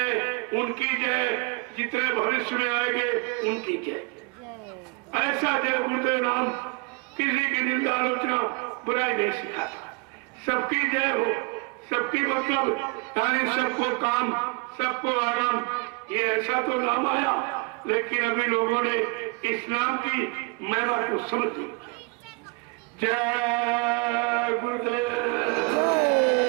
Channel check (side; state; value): left; quieter; 29.0 dB